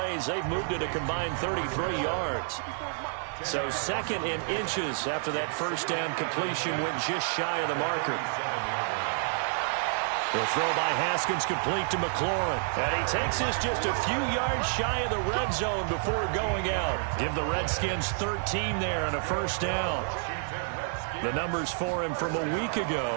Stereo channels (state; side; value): silent; left; 58 dB below the other